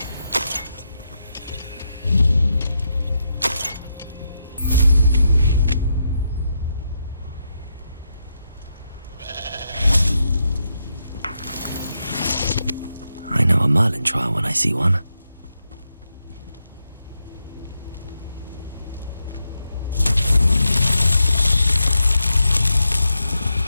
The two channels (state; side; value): inverted; both; correlation -0.84